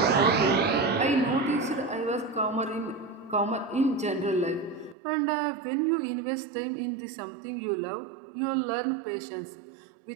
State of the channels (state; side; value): drops out; left; at 5.0 s